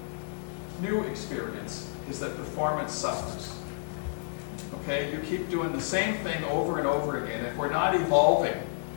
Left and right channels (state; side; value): silent; right; 58 dB below the other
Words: new experience is that performance suffers. Okay, you keep doing the same thing over and over again. If we're not evolving,